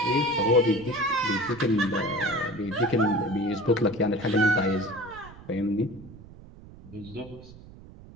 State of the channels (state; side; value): noise; right; rumble, 19 dB below the sound